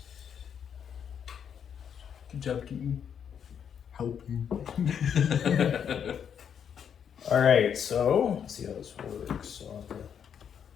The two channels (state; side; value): quieter; right; 8.0 dB